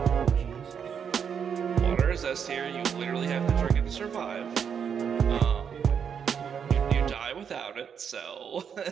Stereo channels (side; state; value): left; quieter; 7.4 dB